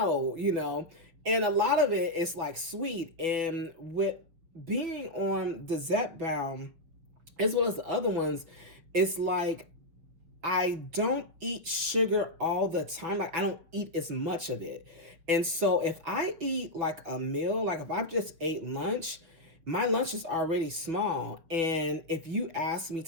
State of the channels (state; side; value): late; left; 6.1 ms